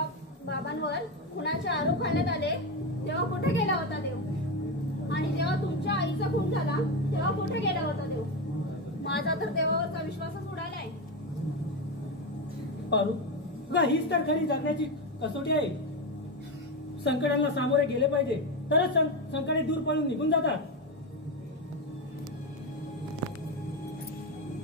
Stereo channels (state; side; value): normal; both; correlation 0.14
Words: बाबांवर खुनाचे आरोप घालण्यात आले तेव्हा कुठे गेला होता देव? आणि जेव्हा तुमच्या आईचा खून झाला तेव्हा कुठे गेला होता देव? माझा तर देवावरचा विश्वासच उडालाय. पारू गा हीच तर खरी जगण्याची कसोटी आहे. संकटांना सामोरे गेले पाहिजे तरच संकटे दूर पळून निघून जातात.